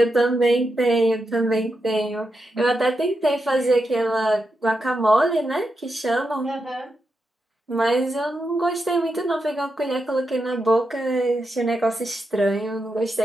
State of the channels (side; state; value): both; normal; correlation 0.86